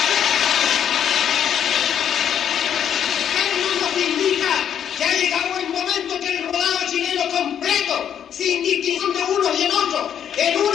Esto nos indica que ha llegado el momento que el rodado chileno completo, sin distinción de unos y en otros, en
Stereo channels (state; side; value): quieter; right; 9.1 dB